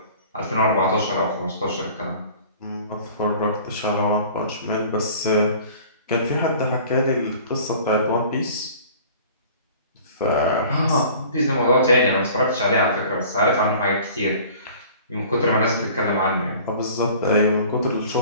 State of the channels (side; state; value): both; inverted; correlation -0.47